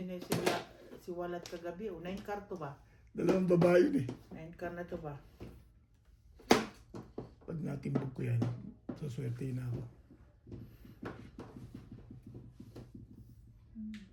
siwalat kagabi. O, 9 car to ba? Dalawang babae yun eh. 9 car na to ba? Pag natimbog ko yan, saswerte na ako.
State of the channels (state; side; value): identical; both; correlation 1.00